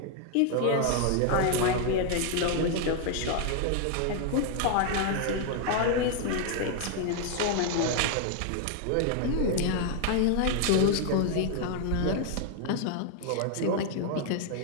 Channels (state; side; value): different; both; correlation 0.00